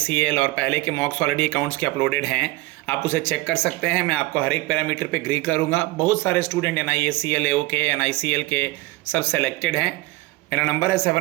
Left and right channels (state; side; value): quieter; left; 20.2 dB